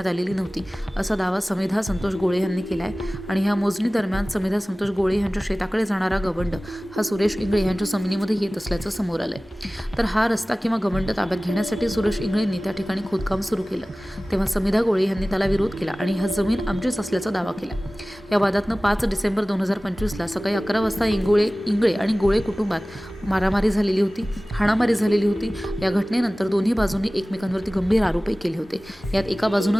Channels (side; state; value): both; normal; correlation 0.98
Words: आलेली नव्हती असा दावा समिधा संतोष गोळे यांनी केलाय आणि ह्या मोजणी दरम्यान समिधा संतोष गोळे यांच्या शेताकडे जाणारा गवंड हा सुरेश इंगळे यांच्या जमिनीमध्ये येत असल्याचं समोर आलंय। तर हा रस्ता किंवा गवंड ताब्यात घेण्यासाठी सुरेश इंगळेंनी त्या ठिकाणी खोदकाम सुरू केलं, तेव्हा समिधा गोळे यांनी त्याला विरोध केला आणि हा जमीन आमचीच असल्याचा दावा केला। या वादातनं 5 डिसेंबर 2025ला सकाळी 11 वाजता इंगळे आणि गोळे कुटुंबात मारामारी झालेली होती, हाणामारी झालेली होती। या घटनेनंतर दोन्ही बाजूंनी एकमेकांवरती गंभीर आरोपही केले होते। यात एका